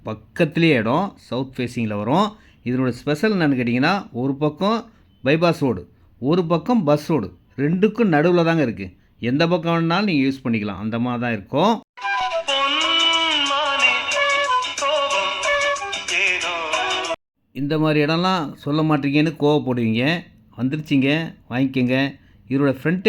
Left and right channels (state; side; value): identical; both; correlation 1.00